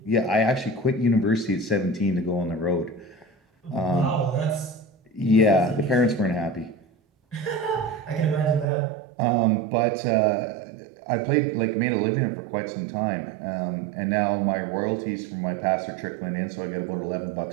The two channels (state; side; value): drops out; left; at 8.7 s